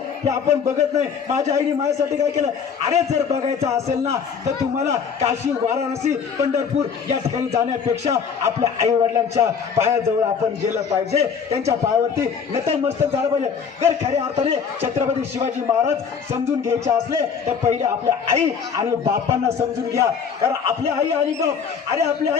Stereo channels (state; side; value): quieter; right; 6.5 dB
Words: हे आपण बघत नाही, माझ्या आईने माझ्यासाठी काय केलं. अरे जर बघायचं असेल ना, तर तुम्हाला काशी, वाराणसी, पंढरपूर या ठिकाणी जाण्यापेक्षा आपल्या आई वडिलांच्या पायाजवळ आपण गेलं पाहिजे, त्यांच्या पायावरती नतमस्तक झालं पाहिजे. जर खऱ्या अर्थाने छत्रपती शिवाजी महाराज समजून घ्यायचे असले तर पहिले आपल्या आई आणि बापांना समजून घ्या. कारण आपल्या आई आणि बाप, अरे आपली